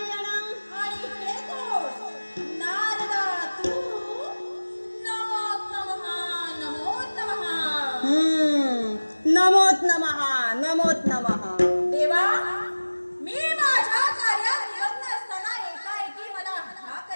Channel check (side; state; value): both; inverted; correlation -1.00